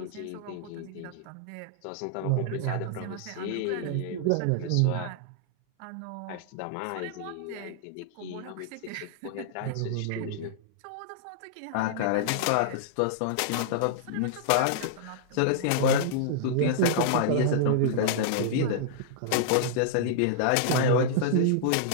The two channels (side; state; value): both; different; correlation -0.01